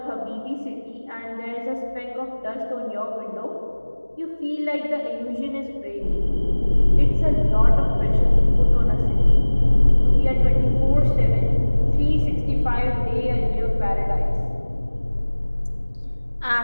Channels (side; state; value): both; inverted; correlation -1.00